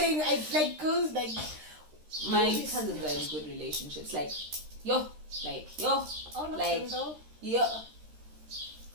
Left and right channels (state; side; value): late; left; 13 ms